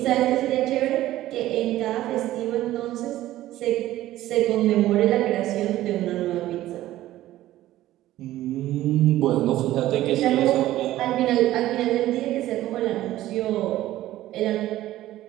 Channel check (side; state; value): left; quieter; 14.8 dB